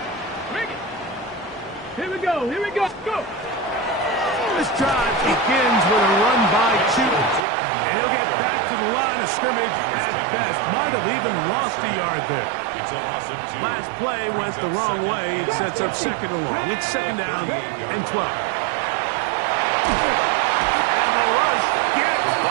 Here we go, go! This drive begins with a run by Chute. And he'll get back to the line of scrimmage at best. Might have even lost a yard there. It's a loss of 2. Last play went the wrong way. It sets up 2nd and long. It's 2nd down and 12. And the rush gets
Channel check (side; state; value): left; drops out; at 7.4 s